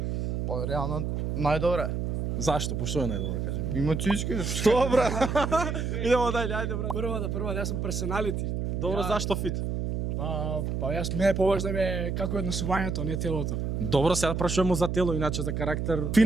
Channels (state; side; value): noise; right; hum, 1 dB below the sound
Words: Па реално најдобре. Зашто? Пошто е најдобро, кажем? Има цички. Што, брат? Идемо дајле, ајде, брат. Прва, јас сум персоналити. Добро, зашто фит? Па јас мене поважно ме како однесувањето, не телото. Добро, сега прашуваме за тело, иначе за карактер.